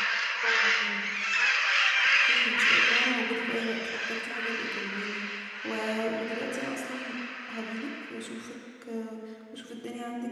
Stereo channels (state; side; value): identical; both; correlation 1.00